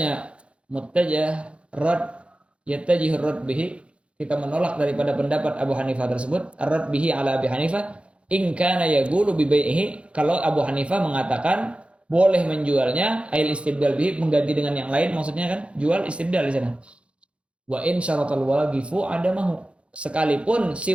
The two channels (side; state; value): left; late; 0.060 ms